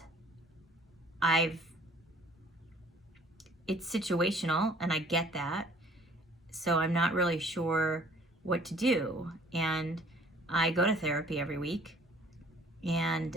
it's situational, and I get that. So I'm not really sure what to do. And I go to therapy every week,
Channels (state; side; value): normal; both; correlation 0.54